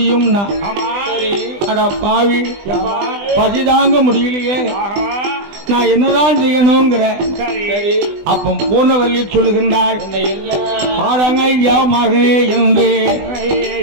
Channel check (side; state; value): left; late; 20 ms